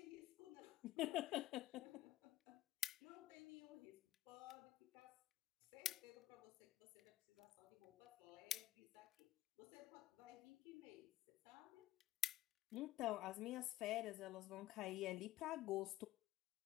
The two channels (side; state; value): right; quieter; 14.2 dB